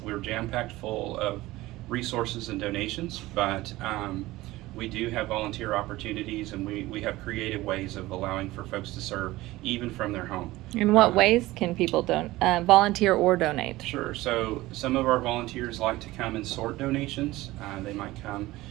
We're jam-packed full of resources and donations, but we do have volunteer opportunities, and we have creative ways of allowing for folks to serve even from their home. In what ways can people volunteer or donate? Sure. So some of our volunteers like to come and sort donations. They might come,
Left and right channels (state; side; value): quieter; left; 18.2 dB